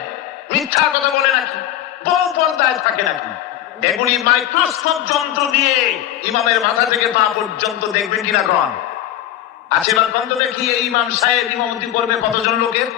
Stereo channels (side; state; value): right; quieter; 12.2 dB